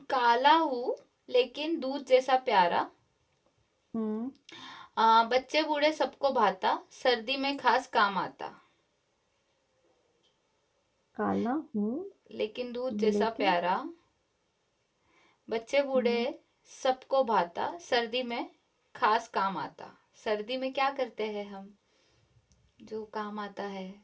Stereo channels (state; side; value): identical; both; correlation 1.00